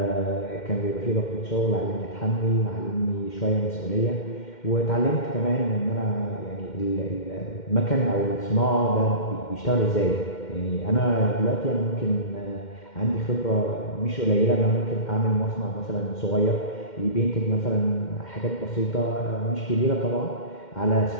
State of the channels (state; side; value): late; right; 2.1 ms